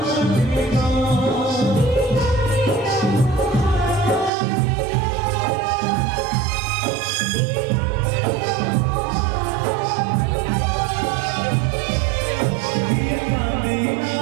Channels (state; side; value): drops out; left; at 4.3 s